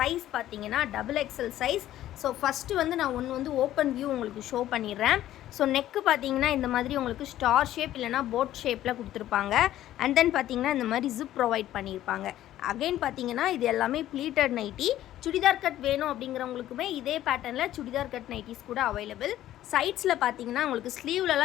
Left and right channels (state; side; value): quieter; right; 13.2 dB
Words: பார்த்தீங்கன்னா XXL சைஸ். ஸோ ஃபஸ்ட்டு வந்து நான் ஒன்று வந்து ஓப்பன் வியூ உங்களுக்கு ஷோ பண்ணிடுறேன். ஸோ நெக்கு பார்த்தீங்கன்னா இந்த மாதிரி உங்களுக்கு ஸ்டார் ஷேப் இல்லைனா போட் ஷேப்பில் கொடுத்துருப்பாங்க. அண்ட் தென் பார்த்தீங்கன்னா இந்த மாதிரி ஜிப் ப்ரொவைட் பண்ணியிருப்பாங்க. அகைன் பார்த்தீங்கன்னா இது எல்லாமே ப்ளீட்டட் நைட்டி. சுடிதார் கட் வேணும் அப்படிங்கிறவங்களுக்குமே இதே பேட்டர்னில் சுடிதார் கட் நைட்டிஸ் கூட அவைலபிள். சைட்ஸில் பார்த்தீங்கன்னா உங்களுக்கு